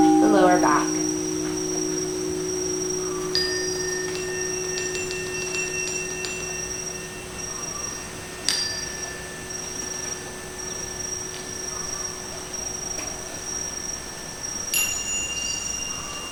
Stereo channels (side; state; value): both; identical; correlation 1.00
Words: the lower back.